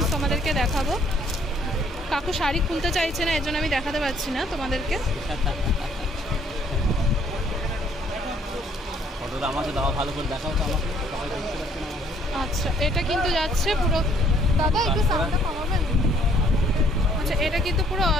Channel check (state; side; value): normal; both; correlation 0.63